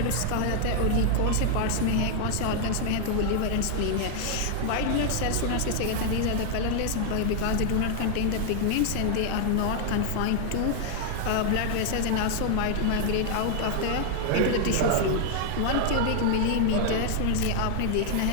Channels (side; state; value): both; different; correlation 0.00